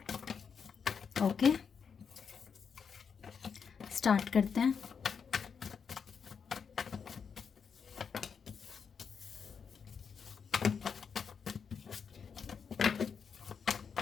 ओके, स्टार्ट करते हैं।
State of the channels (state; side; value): quieter; right; 6.4 dB